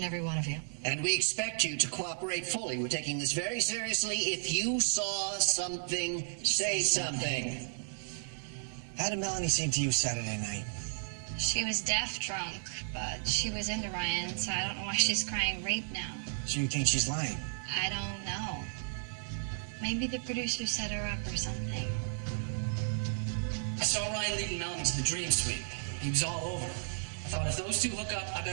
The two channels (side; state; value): left; silent; digital silence